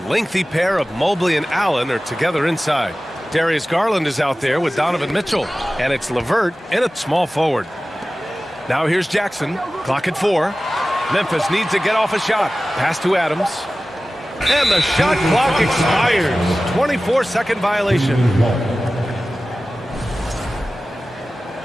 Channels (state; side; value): normal; both; correlation 0.96